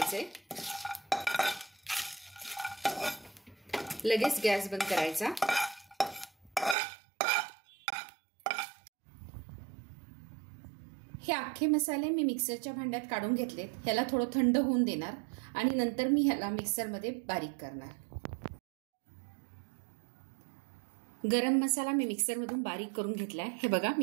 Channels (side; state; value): left; drops out; at 6.8 s